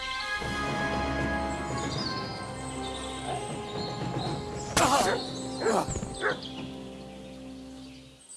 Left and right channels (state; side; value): identical; both; correlation 1.00